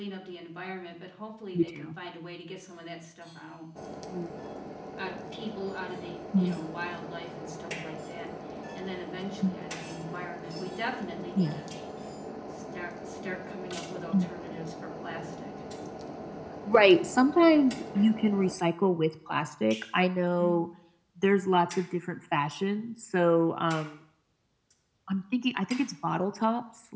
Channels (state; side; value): identical; both; correlation 1.00